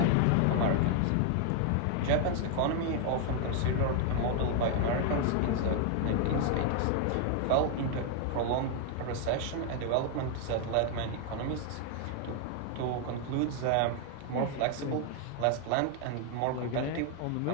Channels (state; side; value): different; both; correlation 0.00